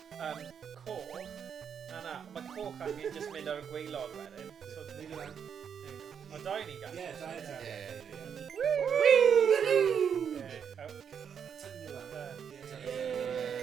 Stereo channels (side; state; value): left; quieter; 7.6 dB